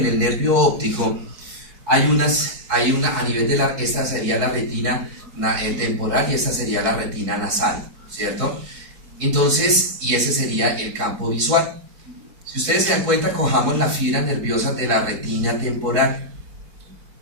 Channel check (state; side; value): late; left; 4.7 ms